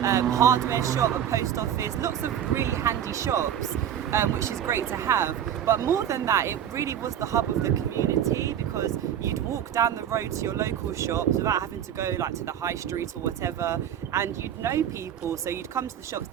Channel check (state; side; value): quieter; left; 9.8 dB